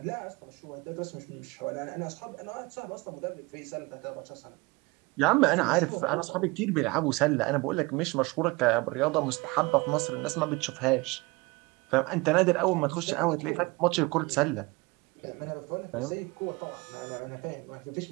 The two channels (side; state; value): left; quieter; 24.7 dB